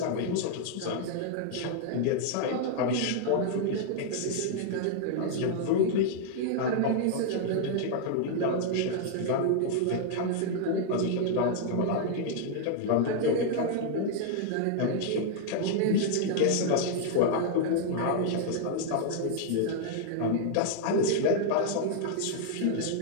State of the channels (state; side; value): different; both; correlation -0.01